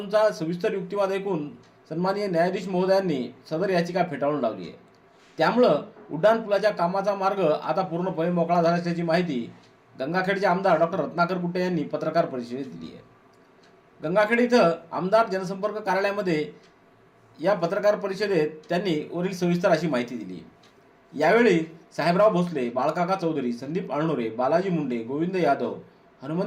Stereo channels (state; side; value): identical; both; correlation 1.00